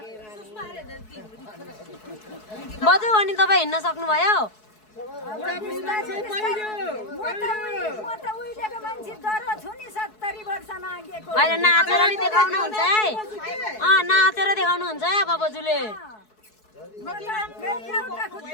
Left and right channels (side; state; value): right; late; 4.7 ms